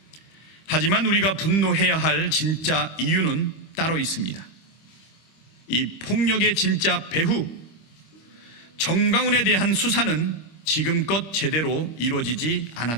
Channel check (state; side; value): late; right; 25 ms